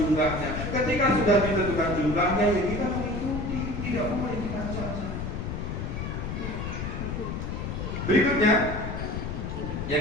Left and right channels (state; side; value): noise; left; rumble, 4 dB below the sound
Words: Ketika sudah ditentukan jumlahnya, ya kita mengikuti, tidak boleh kita cacat. Berikutnya,